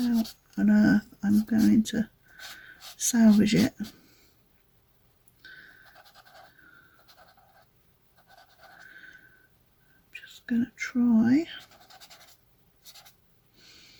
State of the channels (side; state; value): both; identical; correlation 1.00